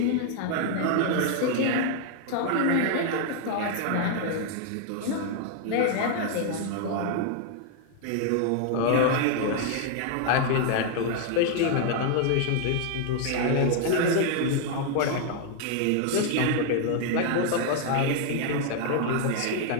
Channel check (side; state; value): both; different; correlation 0.00